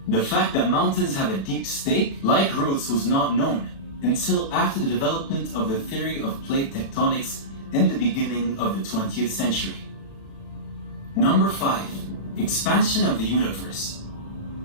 The fact that mountains have a deep stake-like roots was not known until after the development of the theory of plate tectonics in the beginning of the 20th century. Number 5, expansion of the universe.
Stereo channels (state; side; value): late; right; 36 ms